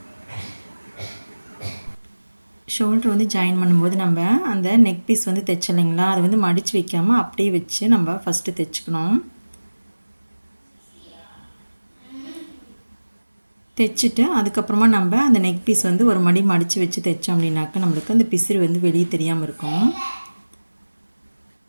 ஷோல்ட்ரு வந்து ஜாயின் பண்ணும்போது நம்ம அந்த நெக் பீஸ் வந்து தைச்சலைங்களா, அதை வந்து மடித்து வைக்காமல் அப்படியே வச்சு நம்ம ஃபஸ்ட்டு தைச்சிக்கணும். தைச்சிட்டு அதுக்கப்புறமா நம்ம அந்த நெக் பீஸ் வந்து ஒரு மடி மடித்து வச்சு தைச்சோம் அப்படின்னாக்கா நம்மளுக்கு அந்த பிசுறு வந்து வெளியே தெரியாமல் இருக்கும்.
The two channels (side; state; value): both; inverted; correlation -1.00